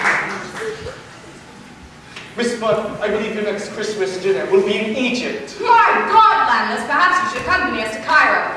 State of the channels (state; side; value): identical; both; correlation 1.00